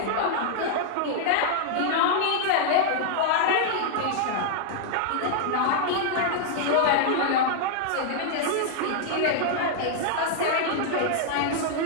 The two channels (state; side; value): different; both; correlation -0.01